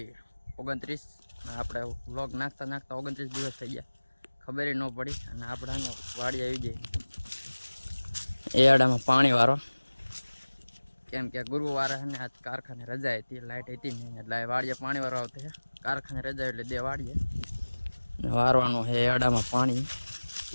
29. આપણે વ્લોગ નાખતા 29 દિવસ થઈ ગયા, ખબર ન પડી. અને આપણે વાડી આવી ગઈ એડામાં પાણી વાળો, કેમ કે ગુરુવારે ને આજ કારખાને રજા હતી, લાઇટ હતી નહીં, એટલે વાડીએ પાણી વાળો આવતો છે. કારખાને રજા એટલે દે વાડીએ વારવાનું છે એડામાં પાણી.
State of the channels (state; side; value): inverted; both; correlation -1.00